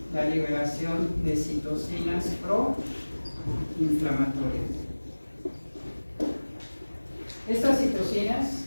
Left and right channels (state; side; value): inverted; both; correlation -1.00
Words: la liberación de citocinas proinflamatorias. Estas citocinas